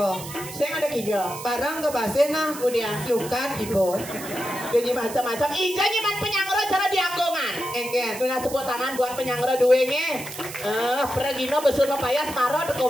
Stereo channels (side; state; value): right; noise; hiss, 12 dB below the sound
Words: Saya ada kijau. Barang ke basena. Kemudian Lukan ibu. jadi macam-macam. Ija nyeman penyangro cara di Anggongan. Enggen. Dengan sebut tangan buat penyangro duenge. Pergino besur mepayas maro